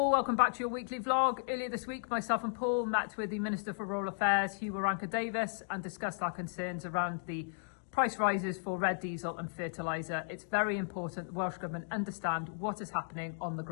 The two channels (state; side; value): silent; right; digital silence